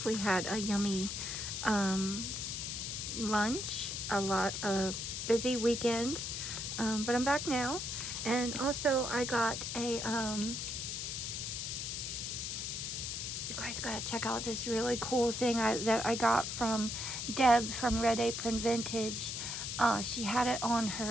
We had a yummy lunch, a busy weekend, but I'm back now. And also I got a, you guys gotta check out this really cool thing that I got from Deb from Red Apron Vintage. She had it on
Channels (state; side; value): noise; left; hiss, 4 dB below the sound